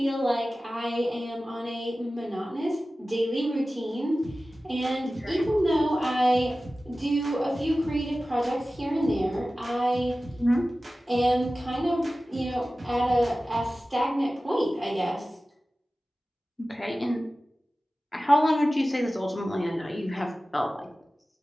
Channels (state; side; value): normal; both; correlation 0.96